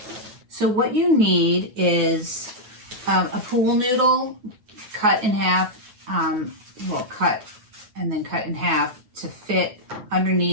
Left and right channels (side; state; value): left; late; 9.4 ms